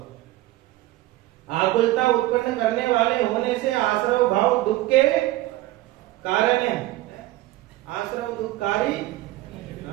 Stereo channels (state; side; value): quieter; left; 17.1 dB